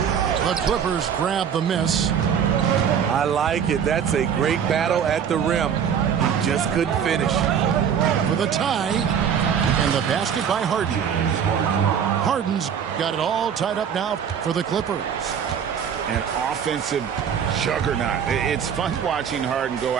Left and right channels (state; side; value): quieter; left; 8.0 dB